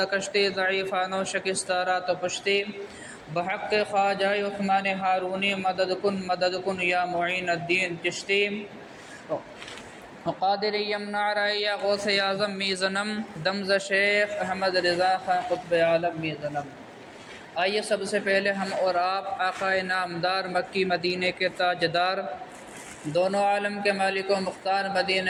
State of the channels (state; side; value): identical; both; correlation 1.00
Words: کشتی ضعیفان و شکستارا تو پشتی، بحق خواجہ عثمان ہارونی مدد کن یا معین الدین چشتی، قادر یمنع رائیا غوث اعظم میزنم، دمز شیخ احمد رضا خان قطب عالم میزنم۔ آئیے سب سے پہلے ہم اور آپ آقا نامدار مکی مدینے کے تاجدار، دونوں عالم کے مالک و مختار،